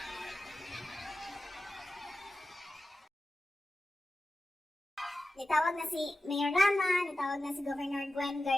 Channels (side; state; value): both; normal; correlation 0.93